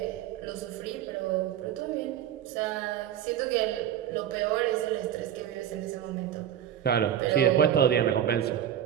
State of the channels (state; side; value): quieter; left; 10.3 dB